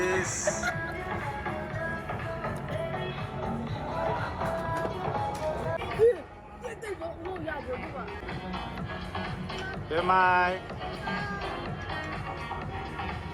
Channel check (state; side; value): identical; both; correlation 1.00